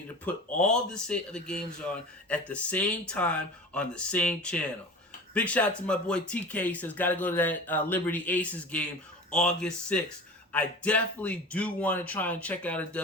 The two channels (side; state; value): both; normal; correlation 0.35